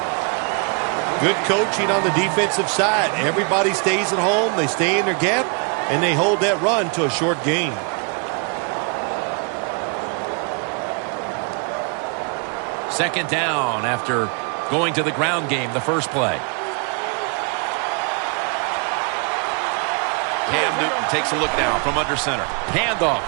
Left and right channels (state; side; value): quieter; left; 37.3 dB